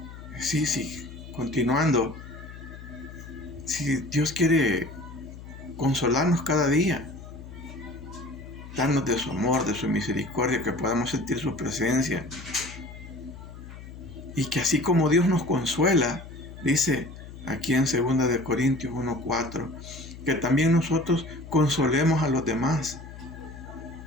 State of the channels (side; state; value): left; noise; hum, 14 dB below the sound